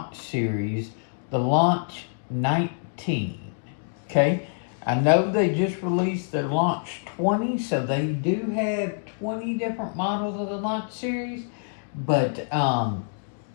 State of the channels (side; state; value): right; silent; digital silence